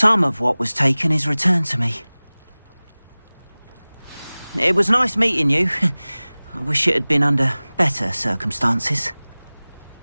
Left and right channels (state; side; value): inverted; both; correlation -0.99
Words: of what was taken is returned to me. It was nice meeting you. I wish it had been under better circumstances.